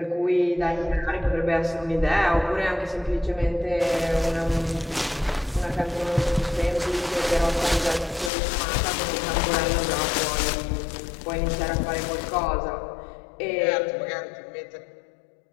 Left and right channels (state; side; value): drops out; right; at 8.3 s